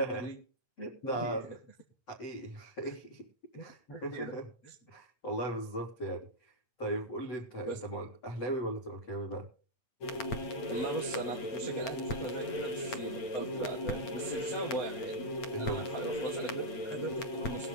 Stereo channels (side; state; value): right; late; 8.7 ms